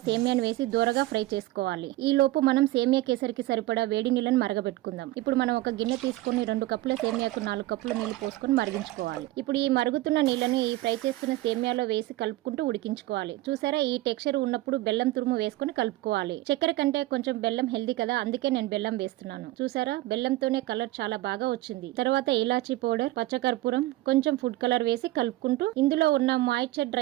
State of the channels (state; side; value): quieter; left; 17.5 dB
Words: సేమియాను వేసి దూరగా ఫ్రై చేసుకోవాలి. ఈ లోపు మనం సేమియా కేసరికి సరిపడా వేడి నీళ్ళని మరగబెట్టుకుందాం. ఇప్పుడు మనం ఒక గిన్నె తీసుకుని 2 కప్పుల సేమియాకు 4 కప్పుల నీళ్లు పోసుకొని మరిగించుకోవాలి. ఇప్పుడు ఈ మరుగుతున్న నీళ్లను ఈ ఫ్రై చేస్తున్న సేమియాలో వేసి కలుపుకుంటూ ఉడికించుకోవాలి. చూసారా, ఈ టెక్స్చర్ ఉన్నప్పుడు బెల్లం తురుము వేసుకొని కలుపుకోవాలి. చక్కెర కంటే కొంచెం బెల్లం హెల్దీ కదా, అందుకే నేను బెల్లం వేస్తున్నాను. చూసారా, బెల్లంతోనే కలర్ చాలా బాగా వచ్చింది. తర్వాత ఇలాచీ పౌడర్, పచ్చకర్పూరం, కొంచెం ఫుడ్ కలర్ వేసి కలుపుకుంటూ ఇందులో ఉన్న మాయిశ్చర్